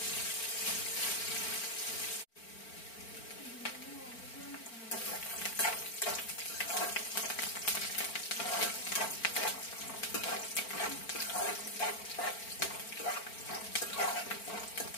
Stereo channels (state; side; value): late; right; 4.4 ms